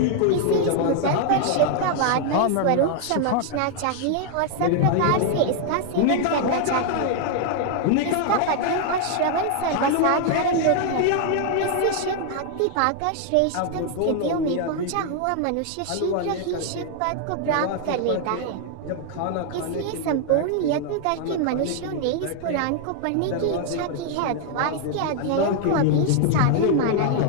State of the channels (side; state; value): both; different; correlation 0.00